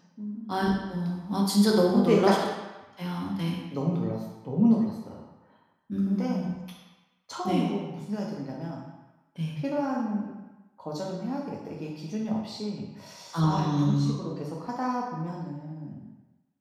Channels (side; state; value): both; identical; correlation 1.00